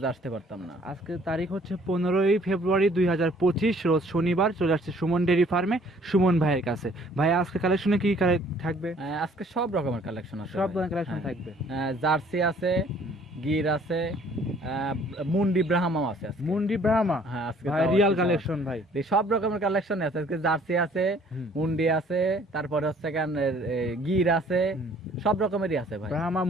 আসতে পারতাম না। আজকে তারিখ হচ্ছে 15ই ফেব্রুয়ারি 2025, রোজ শনিবার। চলে আসছে সুমন ডেয়ারি ফার্মে সুমন ভাইয়ের কাছে। ভাই আজকে কালেকশনে কি থাকবে? আজকে সব রকমের কালেকশন আছে। সব ভাই। ধরনের কালেকশন হ্যাঁ। থাকবে। জার্সি আছে, গির আছে, মুন্ডি ব্রাহ্মাও আছে আজকে। মুন্ডি ব্রাহ্মা। হ্যাঁ, আজকে ভাই তাও রিয়াল আছে, কালেকশন ভাই। এই সব রকমের কালেকশন আছে আজকে। জার্সি আছে, হুম। মুন্ডি আছে, তারপরে হচ্ছে গির আছে, হুম। সব রকমেরই আছে ভাই। ব্রাহ্মা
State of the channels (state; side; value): normal; both; correlation 0.58